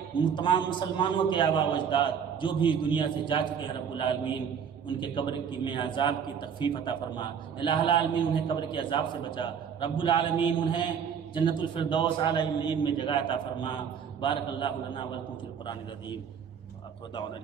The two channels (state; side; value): quieter; left; 7.4 dB